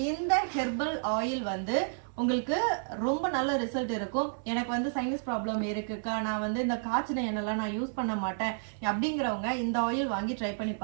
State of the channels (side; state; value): left; silent; 57 dB below the other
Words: இந்த ஹெர்பல் ஆயில் வந்து உங்களுக்கு ரொம்ப நல்ல ரிசல்ட் இருக்கும். எனக்கு வந்து சைனஸ் ப்ராப்ளம் இருக்குக்கா, நான் வந்து இந்த காய்ச்சின எண்ணெய்லாம் நான் யூஸ் பண்ண மாட்டேன் அப்படிங்கிறவங்க இந்த ஆயில் வாங்கி ட்ரை பண்ணி